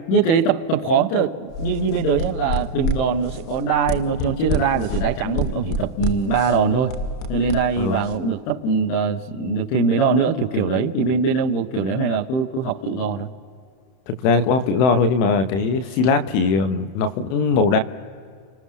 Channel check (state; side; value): late; right; 31 ms